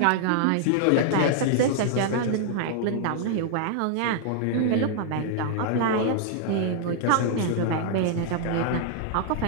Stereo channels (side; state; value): both; different; correlation -0.01